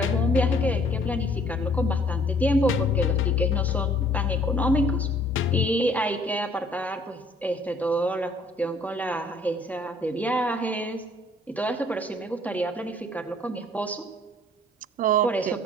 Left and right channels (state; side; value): normal; both; correlation 0.59